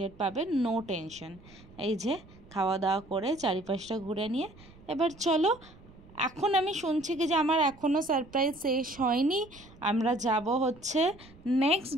পাবে, নো টেনশন। এই যে খাওয়া দাওয়া করে চারিপাশটা ঘুরে নিয়ে এবার চলো, এখন আমি শুনছি কি যে আমার এখনও সারপ্রাইজ শেষ হয়নি, আমরা যাব হচ্ছে নেক্সট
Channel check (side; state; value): right; noise; rumble, 23 dB below the sound